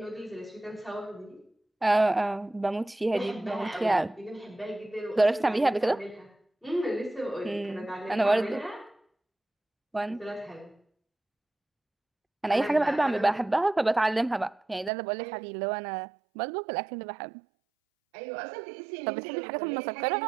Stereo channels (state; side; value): drops out; left; at 14.9 s